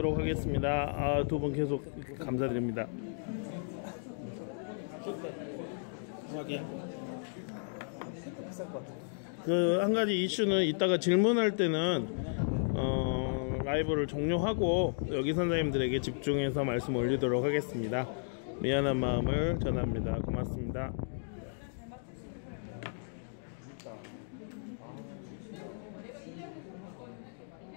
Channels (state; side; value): silent; right; digital silence